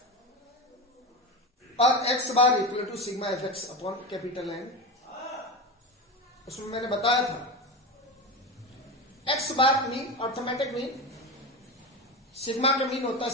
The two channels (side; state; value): both; normal; correlation 0.22